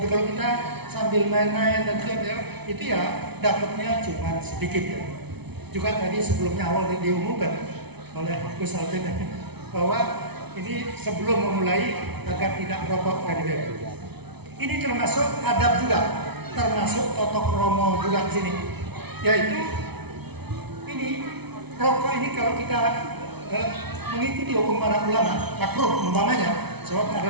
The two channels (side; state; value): left; late; 0.99 ms